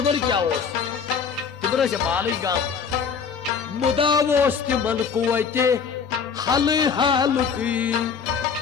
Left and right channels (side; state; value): right; quieter; 6.3 dB